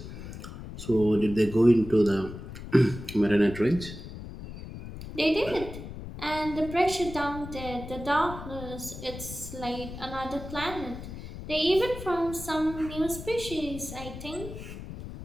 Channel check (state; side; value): noise; left; rumble, 11 dB below the sound